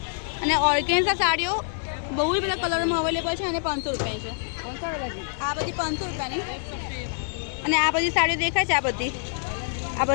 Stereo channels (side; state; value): right; silent; 61 dB below the other